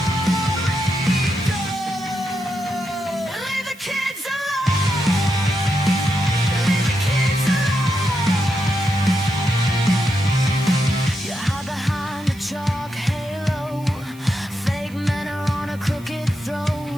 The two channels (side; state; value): right; noise; hiss, 24 dB below the sound